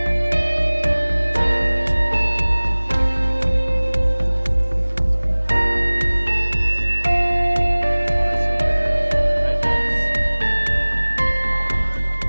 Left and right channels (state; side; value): inverted; both; correlation -1.00